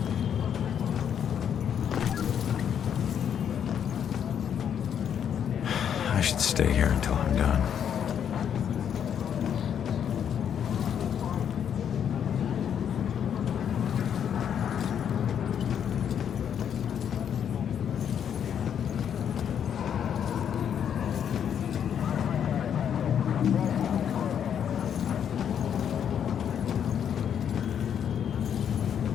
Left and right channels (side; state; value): right; quieter; 8.6 dB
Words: I should stay here until I'm done.